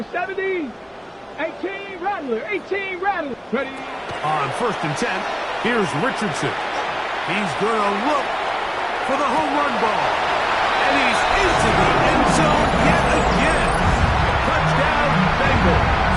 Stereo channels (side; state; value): both; identical; correlation 1.00